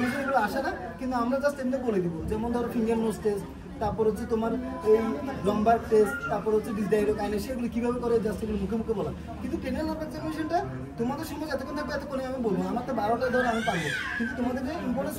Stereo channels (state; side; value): identical; both; correlation 1.00